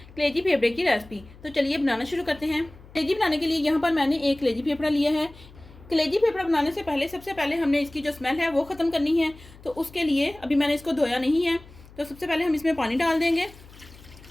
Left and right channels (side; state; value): left; noise; hum, 22 dB below the sound